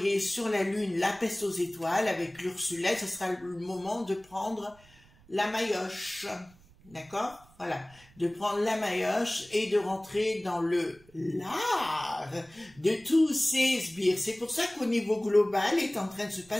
sur la Lune la peste aux étoiles avec l'Ursulette. Ce sera le moment de prendre la maillotche, d'accord? Voilà, de prendre la maillotche et de rentrer dans le lard de tous ces sbires. C'est pour ça qu'au niveau global est en train de se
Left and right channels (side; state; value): right; noise; rumble, 27 dB below the sound